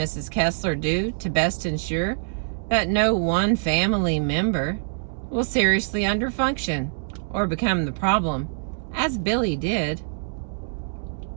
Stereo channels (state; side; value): silent; left; digital silence